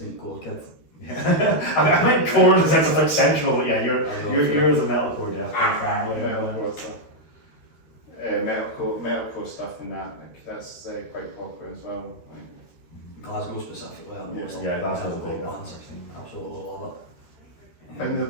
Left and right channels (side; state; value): right; late; 13 ms